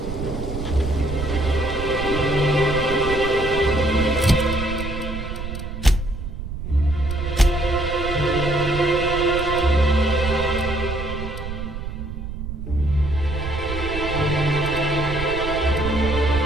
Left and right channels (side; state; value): right; noise; rumble, 7 dB below the sound